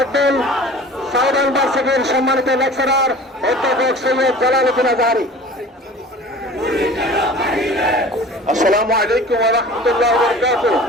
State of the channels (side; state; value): both; normal; correlation 0.42